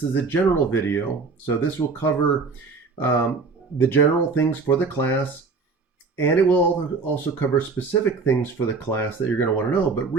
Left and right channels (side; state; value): left; quieter; 4.4 dB